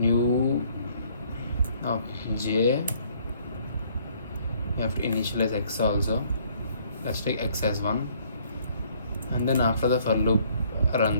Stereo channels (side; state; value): both; inverted; correlation -0.62